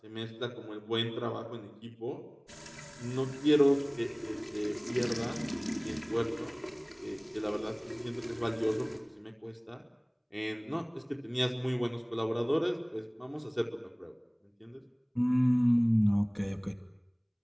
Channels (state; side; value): identical; both; correlation 1.00